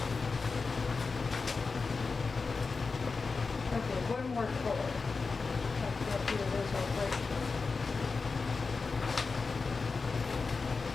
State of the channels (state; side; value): quieter; right; 4.4 dB